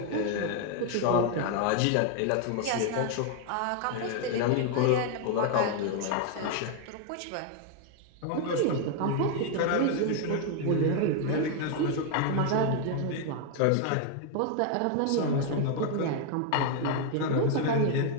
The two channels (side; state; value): both; different; correlation 0.00